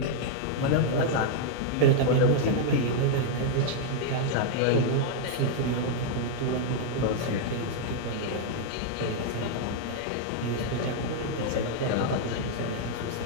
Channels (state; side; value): different; both; correlation -0.01